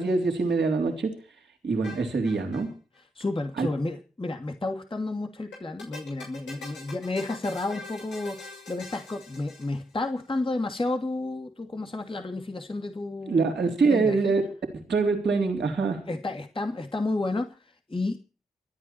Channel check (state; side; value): normal; both; correlation 0.80